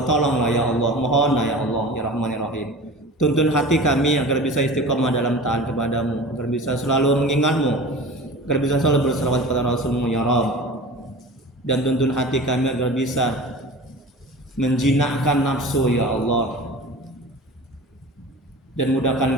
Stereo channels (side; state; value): both; normal; correlation 0.36